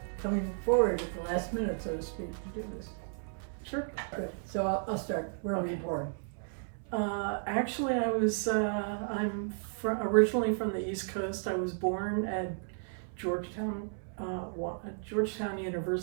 coming forward at the last minute, so to speak, to do this. Sure. Good. So I'll start. Where were you born? Actually, I'm originally from the East Coast. I was born at Georgetown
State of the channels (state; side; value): silent; left; 55 dB below the other